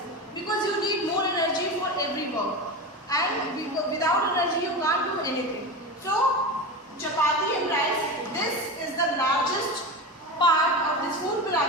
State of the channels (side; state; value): both; normal; correlation 0.24